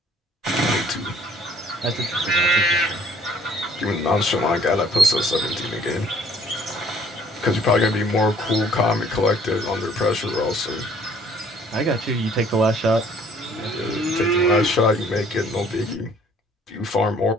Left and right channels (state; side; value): normal; both; correlation 0.58